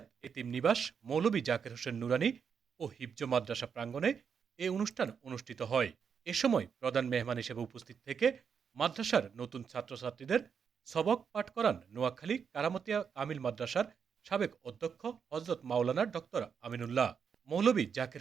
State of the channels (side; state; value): left; quieter; 6.8 dB